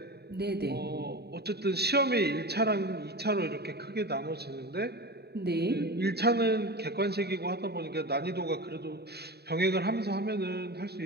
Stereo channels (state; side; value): late; left; 0.47 ms